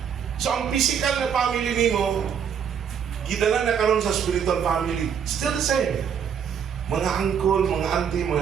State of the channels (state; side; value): quieter; left; 7.8 dB